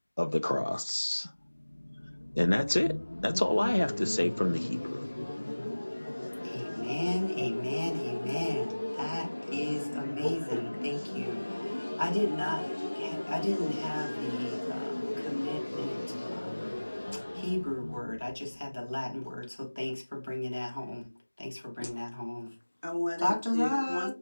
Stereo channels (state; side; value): inverted; both; correlation -1.00